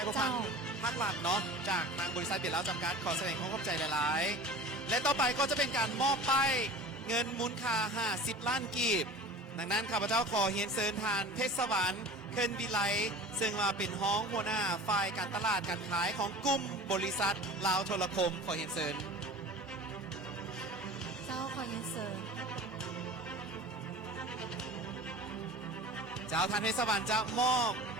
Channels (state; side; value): normal; both; correlation 0.39